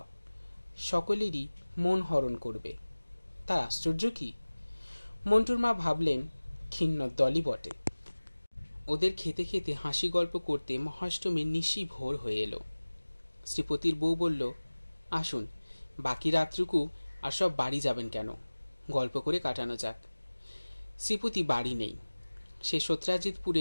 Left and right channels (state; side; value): inverted; both; correlation -1.00